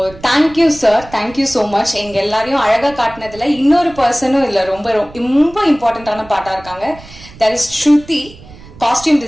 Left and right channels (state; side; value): noise; right; rumble, 20 dB below the sound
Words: thank you sir, thank you so much. எங்க எல்லாரையும் அழகா காட்டினதுல இன்னொரு பர்சனும் இல்லை, ரொம்ப ரொம்ப இம்பார்ட்டன்டான பாட்டா இருக்காங்க. That is Shruti, costume